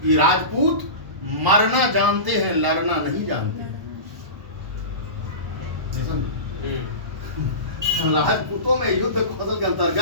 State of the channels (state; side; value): late; left; 1.1 ms